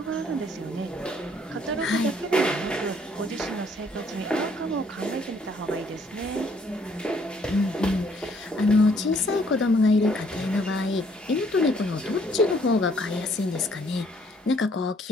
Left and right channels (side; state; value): both; normal; correlation 0.64